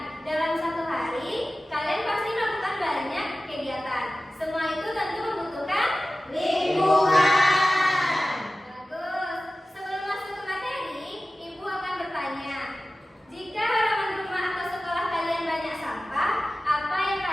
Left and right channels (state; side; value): normal; both; correlation 0.95